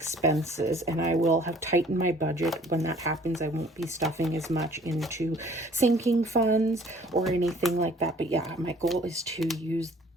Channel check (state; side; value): normal; both; correlation 0.55